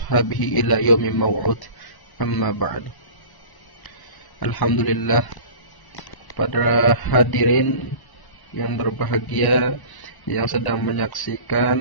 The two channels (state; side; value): late; right; 1.0 ms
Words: ila yawmin maw'ud. Amma ba'du. Alhamdulillah, pada hadirin yang berbahagia yang sedang